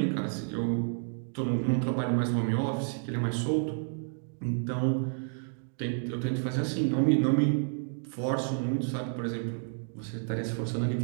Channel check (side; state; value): left; silent; digital silence